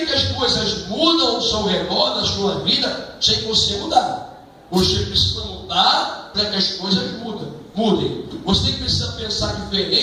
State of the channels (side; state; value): both; identical; correlation 1.00